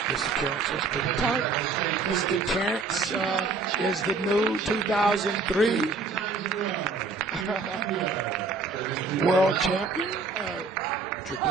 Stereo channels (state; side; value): quieter; left; 4.3 dB